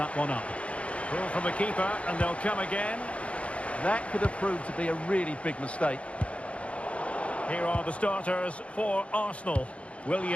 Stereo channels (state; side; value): late; right; 0.062 ms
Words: one up. Ball from the keeper, and they'll come again. That could have proved to be a really big mistake. Here are the starters for Arsenal.